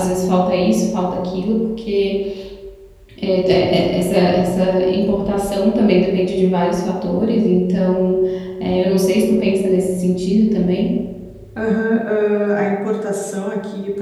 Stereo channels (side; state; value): both; identical; correlation 1.00